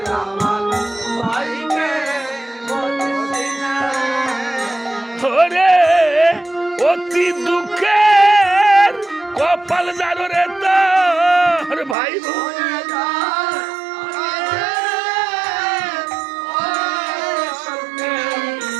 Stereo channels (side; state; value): left; drops out; at 12.0 s